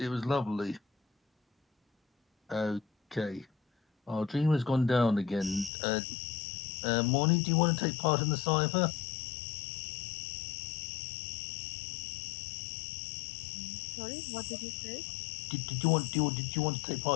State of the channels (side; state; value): right; drops out; at 5.7 s